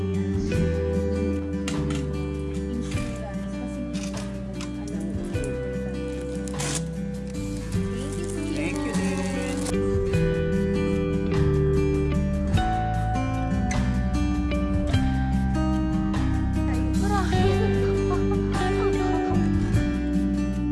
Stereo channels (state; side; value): identical; both; correlation 1.00